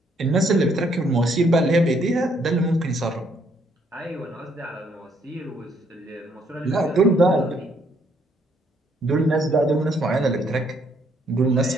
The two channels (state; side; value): normal; both; correlation 0.69